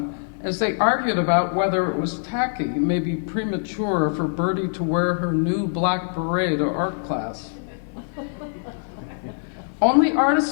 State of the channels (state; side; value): silent; right; 63 dB below the other